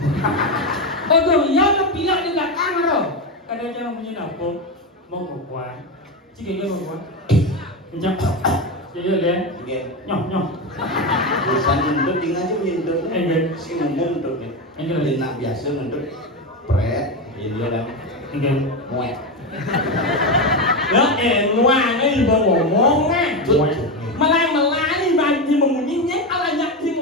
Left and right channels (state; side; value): normal; both; correlation 0.14